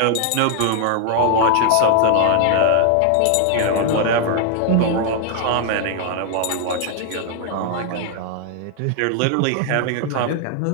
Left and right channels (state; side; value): different; both; correlation 0.00